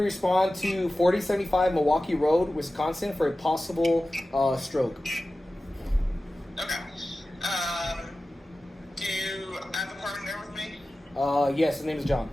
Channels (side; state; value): both; normal; correlation 0.95